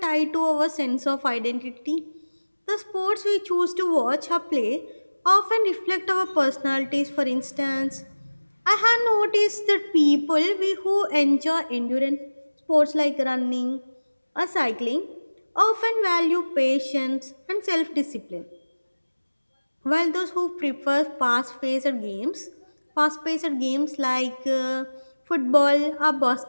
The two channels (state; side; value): inverted; both; correlation -1.00